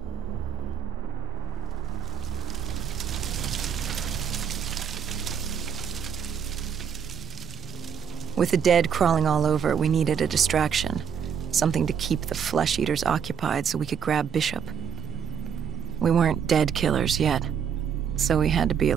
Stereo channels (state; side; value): quieter; left; 7.8 dB